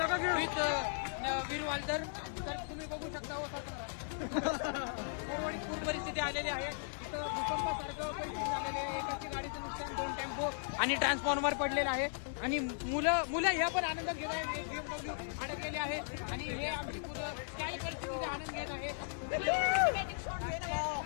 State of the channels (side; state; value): right; silent; digital silence